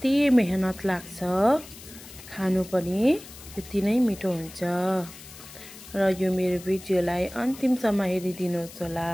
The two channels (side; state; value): left; noise; hiss, 17 dB below the sound